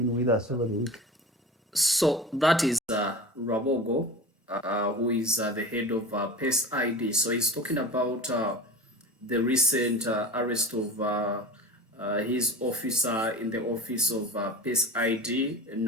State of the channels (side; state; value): both; normal; correlation 0.33